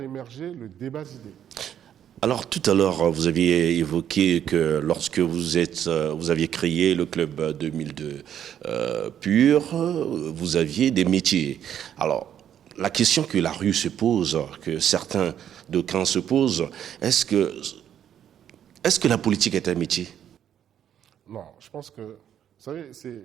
émerger le débat d'idées. Alors tout à l'heure, vous aviez évoqué que lorsque vous aviez créé le Club 2002 PUR, vous aviez des métiers. Alors, la question que la rue se pose, que certains d'aucuns se posent, est-ce que la politique est un métier? Non, je pense que, vous savez,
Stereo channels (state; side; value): quieter; left; 9.8 dB